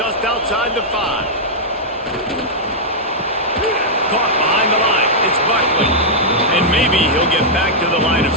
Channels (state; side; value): normal; both; correlation -0.07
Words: outside the 5. Caught behind the line. It's Buckley. And maybe he'll get back to the line of